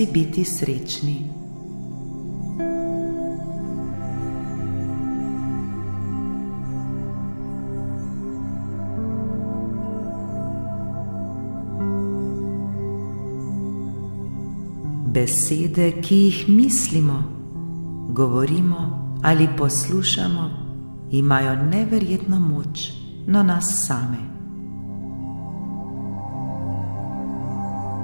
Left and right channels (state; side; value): inverted; both; correlation -1.00